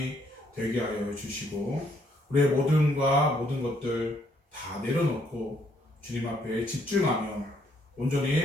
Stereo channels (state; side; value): normal; both; correlation 0.69